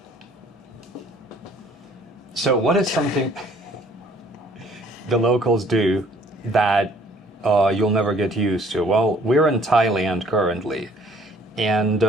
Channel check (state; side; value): normal; both; correlation 0.58